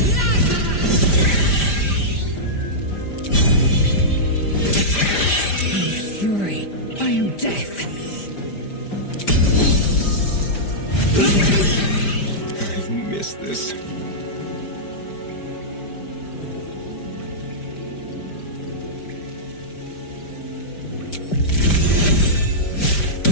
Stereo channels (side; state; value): right; late; 5.0 ms